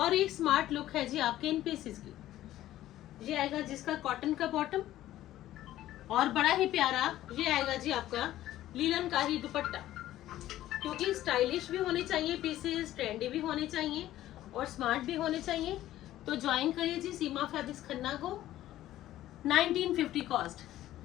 एक स्मार्ट लुक है जी आपके इन पीसेस की। ये आएगा जिसका कॉटन का बॉटम, और बड़ा ही प्यारा ये आएगा जी आपका लीलन का ही दुपट्टा। क्योंकि स्टाइलिश भी होने चाहिए पीसेस, ट्रेंडी भी होने चाहिए और स्मार्ट भी होने चाहिए। तो ज्वाइन करिए जी सीमा फैब्रिक्स खन्ना को। 1950 कॉस्ट।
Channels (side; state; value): right; quieter; 14.0 dB